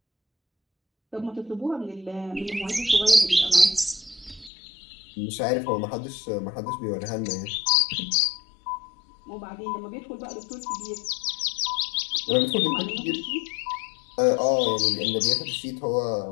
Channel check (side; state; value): right; drops out; at 4.5 s